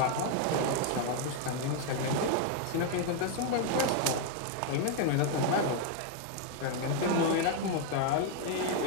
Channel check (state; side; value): different; both; correlation 0.00